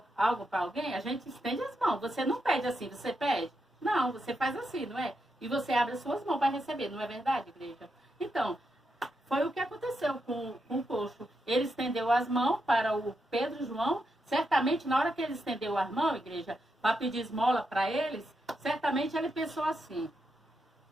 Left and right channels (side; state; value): both; normal; correlation 0.84